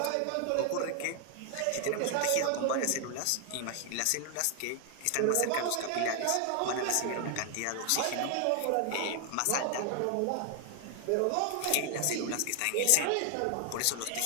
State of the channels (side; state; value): both; different; correlation 0.00